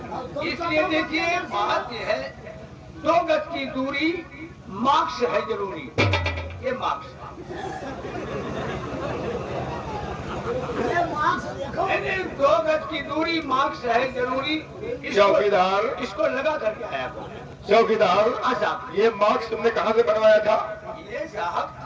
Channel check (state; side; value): identical; both; correlation 1.00